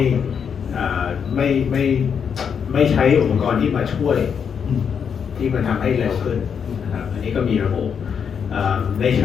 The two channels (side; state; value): right; quieter; 7.1 dB